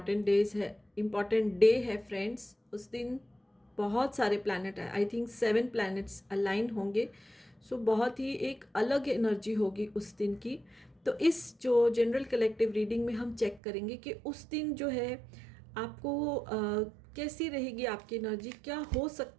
डे है फ्रेंड्स। उस दिन बहुत सारे प्लैनेट है, आई थिंक 7 प्लैनेट्स अलाइन होंगे। सो बहुत ही एक अलग एनर्जी होगी उस दिन की। तो इस जो जनरल कलेक्टिव रीडिंग में हम चेक करेंगे कि उस दिन जो है आपको कैसी रहेगी आपकी एनर्जी, क्या हो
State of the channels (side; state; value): left; drops out; at 13.6 s